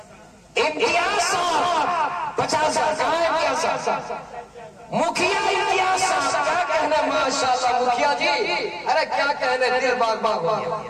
इम्तियाज साहब 50,000, कहाँ है इम्तियाज साहब? मुखिया इम्तियाज साहब, क्या कहने, माशाअल्लाह मुखिया जी, अरे क्या कहने, दिल बाग बाग हो गया।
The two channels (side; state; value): both; identical; correlation 1.00